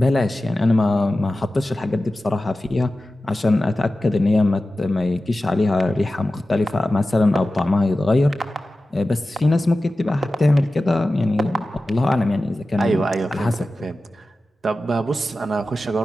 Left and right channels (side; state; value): both; normal; correlation 0.94